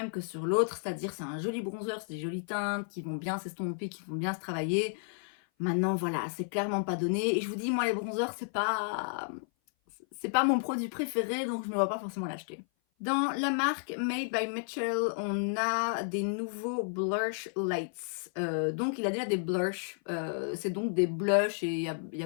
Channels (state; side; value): silent; right; 56 dB below the other